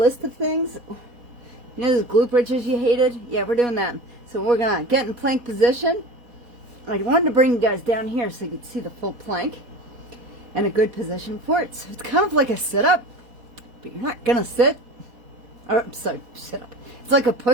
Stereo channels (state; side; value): late; left; 4.1 ms